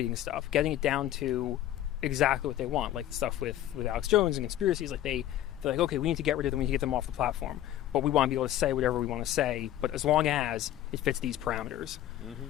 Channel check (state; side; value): quieter; right; 12.7 dB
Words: stuff, getting it down to exactly what they want. Like stuff with Alex Jones and conspiracies. Like they're like, okay, we need to get rid of them. We need to get them off the platform. But we want to be able to say whatever we want to say. But as long as it fits these parameters,